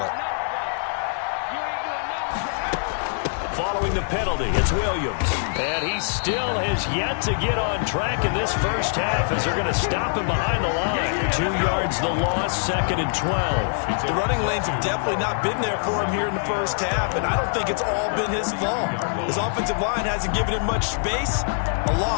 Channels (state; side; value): silent; right; 63 dB below the other